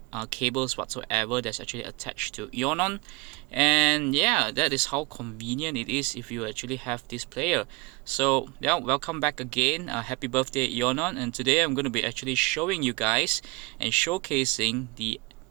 cables whatsoever that's actually attached to Ionon. And yeah, that is how convenient it is if you actually have this player. So yeah, welcome back again. Happy birthday, Ionon. And today I'm going to be actually showing you guys and showcasing the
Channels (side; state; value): left; quieter; 25.5 dB